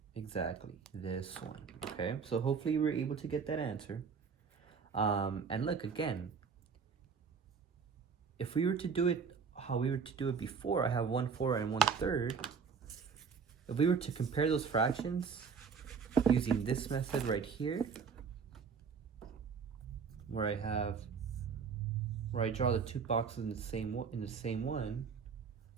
Exactly, this one, okay? So hopefully you were able to get that answer. And look, again, if we were to do it how we were to do it before, I have 1/4 and 1/3. If we were to compare those fractions using this method right here, where I draw the 2 boxes in the same one,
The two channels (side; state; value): left; quieter; 5.9 dB